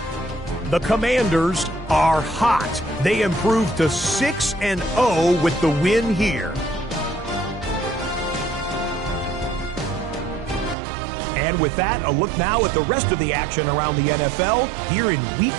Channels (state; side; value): drops out; left; at 10.8 s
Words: The Commanders are hot. They improved to 6-0 with the win here. And with that, a look now at the rest of the action around the NFL here in week